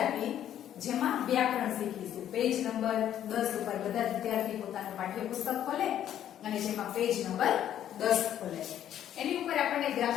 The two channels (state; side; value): quieter; right; 10.8 dB